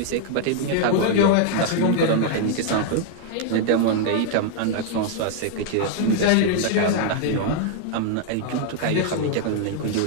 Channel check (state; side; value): different; both; correlation 0.00